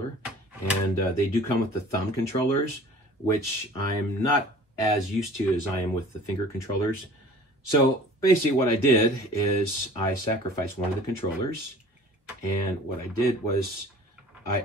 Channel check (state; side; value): normal; both; correlation 0.47